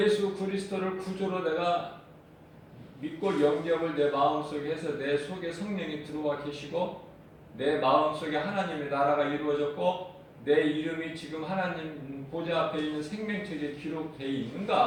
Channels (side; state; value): both; identical; correlation 1.00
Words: 그리스도를 구주로 내가 믿고 영접을 내 마음속에 해서 내 속에 성령이 들어와 계시고 내 마음속에 하나님의 나라가 이루어졌고 내 이름이 지금 하나님 보좌 앞에 있는 생명책에 기록되어